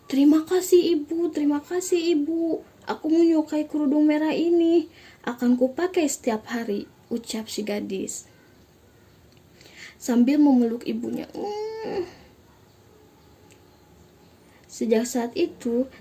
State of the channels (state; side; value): identical; both; correlation 1.00